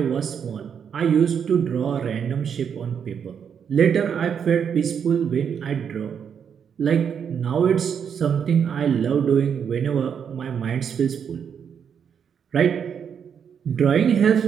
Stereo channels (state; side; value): quieter; left; 7.5 dB